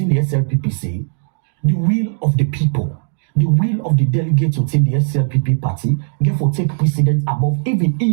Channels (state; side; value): silent; left; digital silence